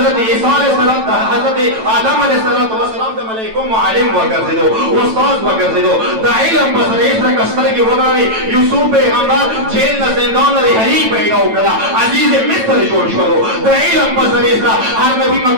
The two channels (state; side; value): late; left; 9.0 ms